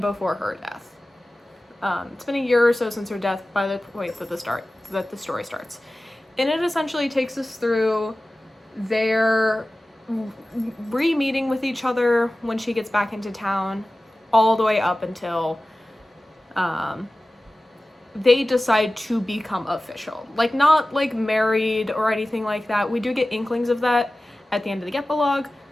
her death. It's been a year or so since her death by the point that the story starts. And it essentially takes us through their re-meeting with each other when she gets back into town, all the way up until they decide to become official. Like, not like married or anything like that. We do get inklings of that at the end of the epilogue,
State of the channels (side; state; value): both; normal; correlation 0.96